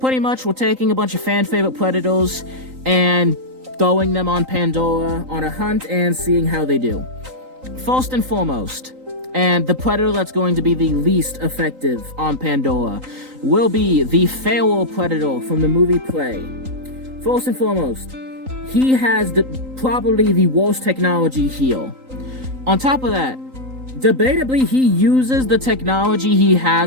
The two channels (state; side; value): late; left; 3.8 ms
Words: much, we're taking a bunch of fan-favorite Predators and throwing them on Pandora on a hunt and seeing how they do. First and foremost, and the Predator that's going to be the least effective on Pandora will be the Feral Predator from the movie Prey. First and foremost, he has probably the worst technology here. On top of that, debatably, he uses the technology he